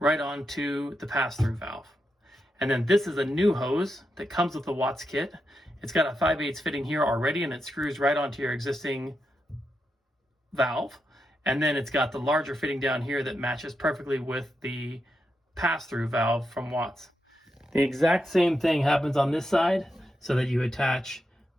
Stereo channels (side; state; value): both; normal; correlation 0.85